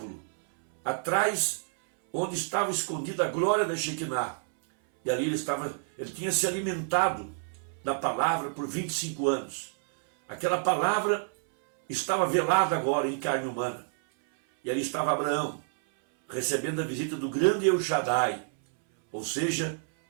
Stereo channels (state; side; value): silent; left; 58 dB below the other